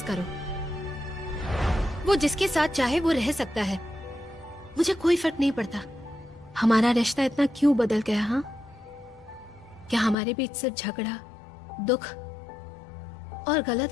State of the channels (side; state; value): right; drops out; at 10.2 s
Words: करो। वो जिसके साथ चाहे वो रह सकता है, मुझे कोई फर्क नहीं पड़ता। हमारा रिश्ता इतना क्यों बदल गया? हाँ, क्या हमारे बीच सिर्फ झगड़ा, दुख और गलत